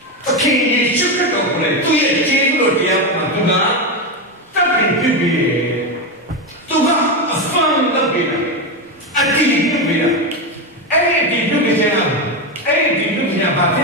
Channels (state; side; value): normal; both; correlation 0.12